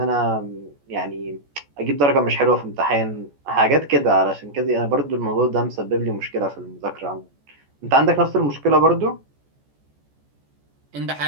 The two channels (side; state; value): left; late; 14 ms